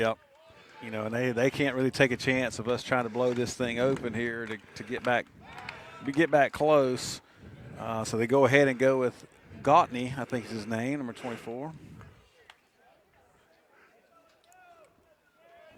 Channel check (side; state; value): both; identical; correlation 1.00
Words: You know, and they can't really take a chance of us trying to blow this thing open here to get back close. So they go ahead and go with Gautney, I think is his name, number 24.